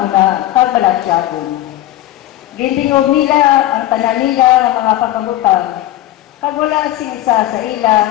kag balatyagon. Gintingog nila ang tanan nila ng mga pagkabutang, kag wala sing isa sa ila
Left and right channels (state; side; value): quieter; right; 14.3 dB